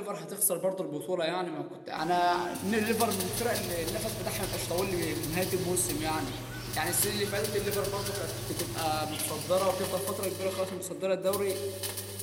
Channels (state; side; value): identical; both; correlation 1.00